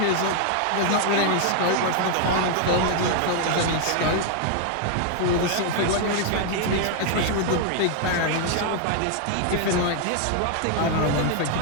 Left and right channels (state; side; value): different; both; correlation 0.00